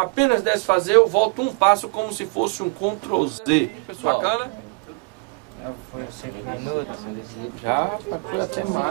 desfazer, eu volto um passo como se fosse um Ctrl Z. Bacana? Foi 5 minutos. Já, foi até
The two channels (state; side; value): quieter; left; 31.4 dB